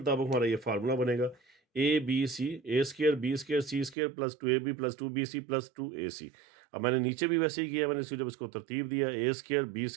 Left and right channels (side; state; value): left; drops out; at 4.0 s